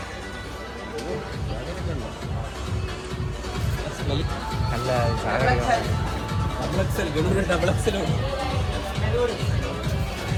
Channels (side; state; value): both; identical; correlation 1.00